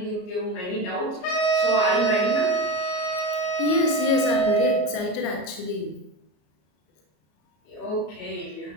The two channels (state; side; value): late; right; 33 ms